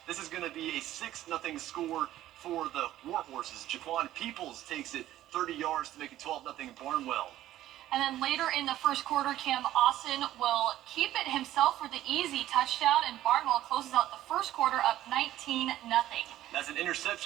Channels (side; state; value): left; quieter; 13.7 dB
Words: This is going to be a 6-0 score for the Warhorses. Jaquan Peoples takes it 30 yards to make it 12-0 Barnwell. And then later in the first quarter, Cam Austin will keep it himself for the easy touchdown, and Barnwell closes out the first quarter up 19-0. That's an